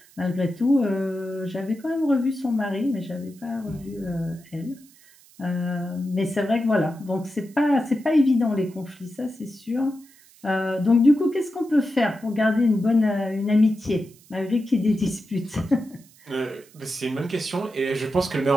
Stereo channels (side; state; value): right; noise; hiss, 26 dB below the sound